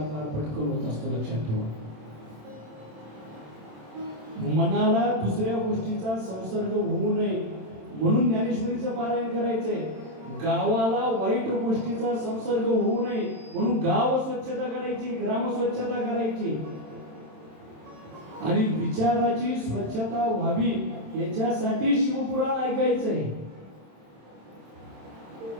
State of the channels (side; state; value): left; late; 27 ms